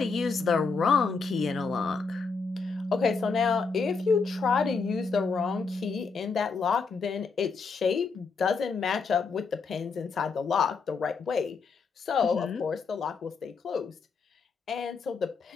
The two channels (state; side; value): quieter; right; 4.8 dB